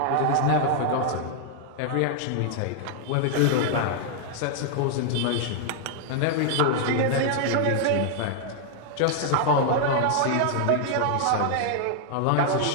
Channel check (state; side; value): different; both; correlation 0.00